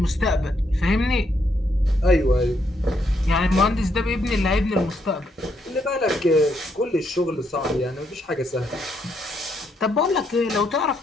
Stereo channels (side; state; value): both; normal; correlation 0.75